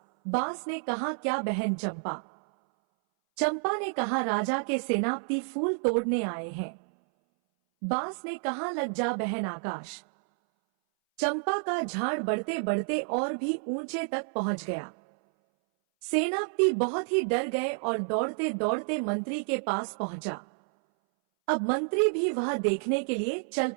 बांस ने कहा, क्या बहन चंपा? चंपा ने कहा, राजा के सेनापति फूल तोड़ने आए हैं। बांस ने कहा, लग जा बहन आकाश। चंपा का झाड़ बढ़ते बढ़ते और भी ऊंचे तक पहुंच गया। सेनापति बहुत ही डर गए और दौड़ते दौड़ते मंत्री के पास पहुंचा। अब मंत्री भी वह देखने के लिए चल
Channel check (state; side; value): silent; left; 58 dB below the other